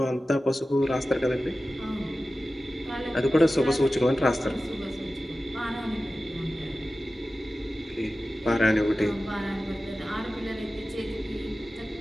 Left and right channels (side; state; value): both; normal; correlation 0.95